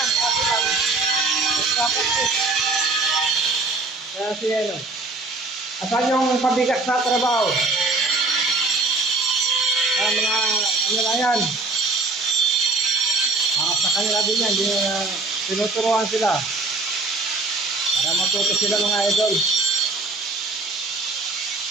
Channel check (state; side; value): quieter; left; 3.4 dB